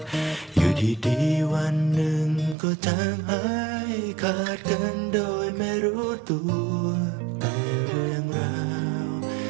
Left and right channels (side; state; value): left; drops out; at 2.6 s